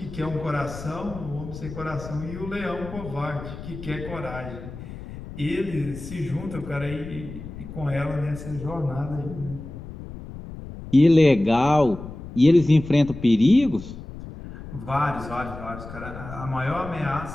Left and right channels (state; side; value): noise; left; rumble, 12 dB below the sound